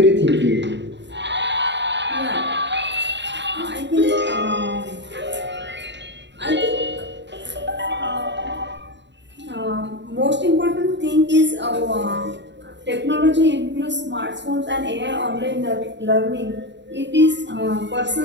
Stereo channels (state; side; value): late; left; 0.52 ms